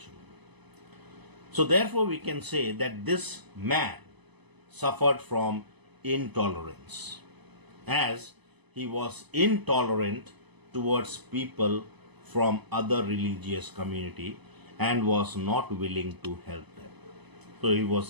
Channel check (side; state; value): left; late; 1.0 ms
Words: So therefore we can say that this man suffered from intolerance, as he was intolerant towards people from other religious community and was not willing to help them. So he